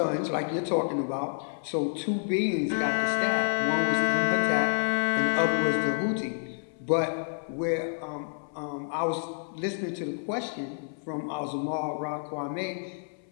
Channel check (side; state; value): right; silent; 59 dB below the other